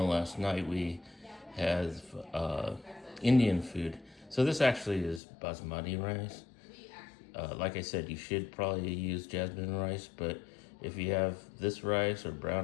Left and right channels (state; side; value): drops out; right; at 5.2 s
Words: last night. We had Indian food. So this actually is basmati rice. Like I said, you should probably use jasmine rice, but if you have this rice or